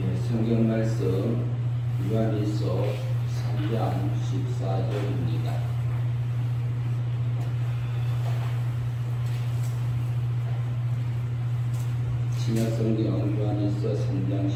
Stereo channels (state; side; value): identical; both; correlation 1.00